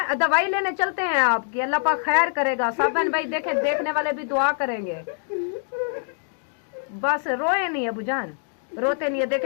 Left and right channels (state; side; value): silent; right; digital silence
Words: दवाई लेने चलते हैं आपकी, अल्लाह पाक खैर करेगा। सब बहन भाई देखे, देखने वाले भी दुआ करेंगे। बस रोए नहीं अबू जान, रोते नहीं है।